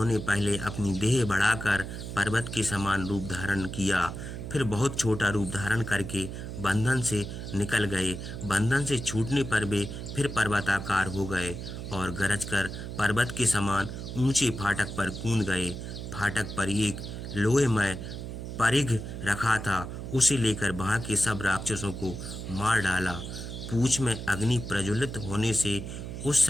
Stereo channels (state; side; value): noise; right; hum, 8 dB below the sound